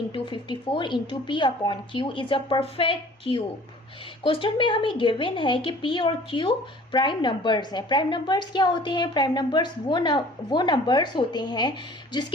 into 54 into P upon Q is a perfect cube. Question में हमें given है कि P और Q प्राइम नंबर्स हैं। Prime numbers क्या होते हैं? Prime numbers वो नंबर्स होते हैं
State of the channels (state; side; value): normal; both; correlation 0.49